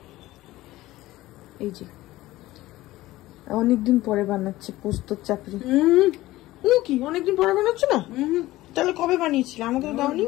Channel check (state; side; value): quieter; right; 17.1 dB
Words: এই যে অনেকদিন পরে বানাচ্ছে পোস্ত চাপড়ি। কি অনেকদিন পরে বানাচ্ছে না? তাহলে কবে বানিয়েছিলে? আমাকে তো দাওনি।